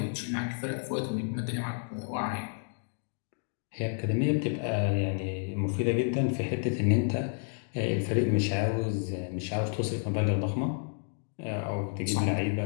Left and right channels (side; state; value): right; silent; 57 dB below the other